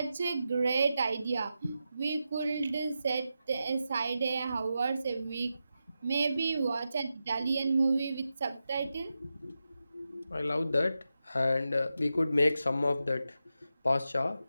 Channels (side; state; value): both; inverted; correlation -0.90